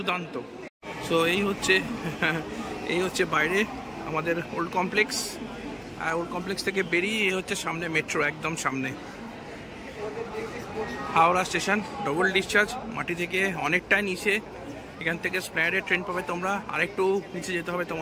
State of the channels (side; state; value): both; identical; correlation 1.00